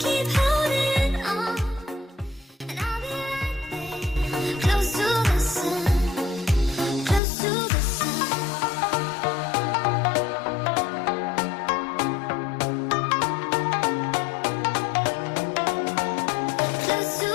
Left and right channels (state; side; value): drops out; right; at 7.2 s